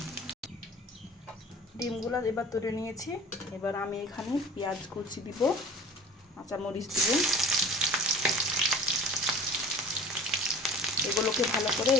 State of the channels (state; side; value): normal; both; correlation 0.42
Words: ডিমগুলো এবার তুলে নিয়েছি। এবার আমি এখানে পেঁয়াজ কুচি দিব, কাঁচামরিচ দিব। এগুলোকে ভালো করে